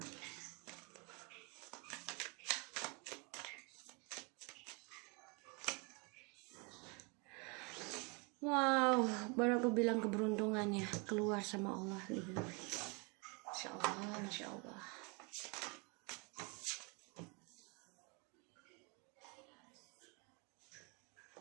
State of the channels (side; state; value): left; quieter; 31.3 dB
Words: Wow, baru aku bilang keberuntungannya keluar sama Allah. Masya Allah, Masya Allah.